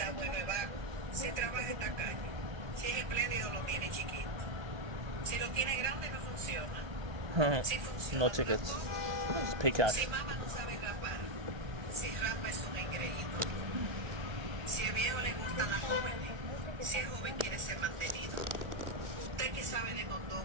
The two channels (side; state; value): left; late; 1.2 ms